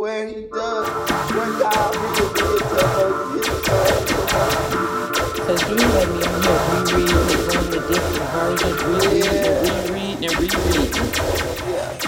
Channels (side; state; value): both; identical; correlation 1.00